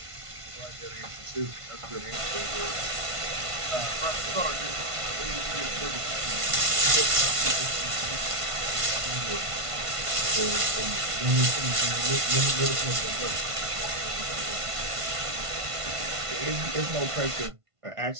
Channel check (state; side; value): late; left; 1.5 ms